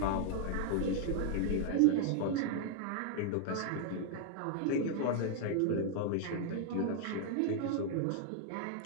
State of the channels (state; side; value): different; both; correlation -0.01